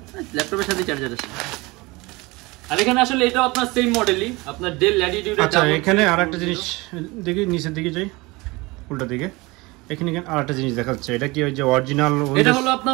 ল্যাপটপের সাথে চার্জার আছে। আর এখানে আসলে এটা আপনার সেম মডেলই, আপনার ডেল ল্যাটিটিউড। আচ্ছা এখানে আরেকটা জিনিস দেখি, নিচের দিকে যাই, উল্টা দিকে, এখানে আরেকটা জিনিস দেখাচ্ছে, এটা কি ওই যে অরিজিনাল? এটা হলো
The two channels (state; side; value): quieter; left; 23.5 dB